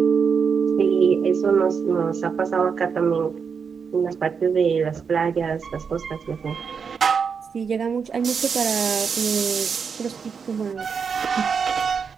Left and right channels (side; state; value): left; quieter; 6.1 dB